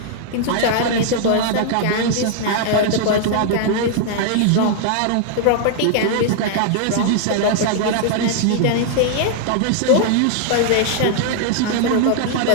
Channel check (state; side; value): different; both; correlation -0.01